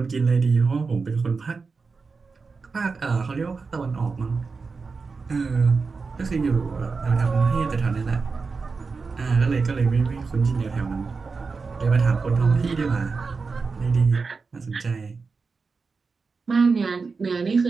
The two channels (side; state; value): left; quieter; 4.6 dB